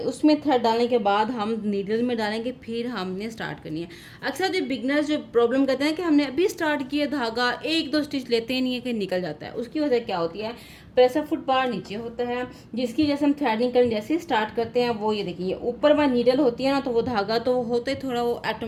थ्रेड डालने के बाद हम नीडल में डालेंगे, फिर हमने स्टार्ट करनी है। अक्सर जो बिगनर्स जो प्रॉब्लम करते हैं कि हमने अभी स्टार्ट किया, धागा एक दो स्टिच लेते ही नहीं है कि निकल जाता है। उसकी वजह क्या होती है, प्रेशर फुट बार नीचे होता है, जिसकी जैसे हम थ्रेडिंग करने जैसे स्टार्ट करते हैं वो ये देखिए ऊपर में नीडल होती है ना, तो वो धागा तो होते थोड़ा वो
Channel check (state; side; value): identical; both; correlation 1.00